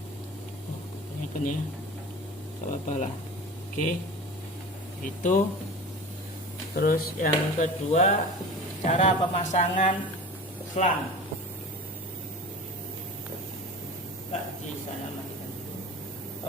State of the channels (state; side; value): normal; both; correlation 0.35